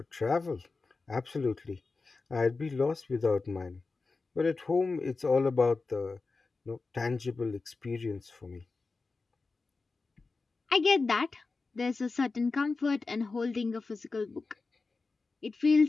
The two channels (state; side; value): quieter; right; 3.9 dB